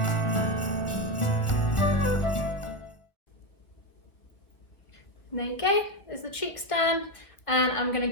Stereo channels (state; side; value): late; right; 1.4 ms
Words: There you go, there's the cheeks done, and I'm going to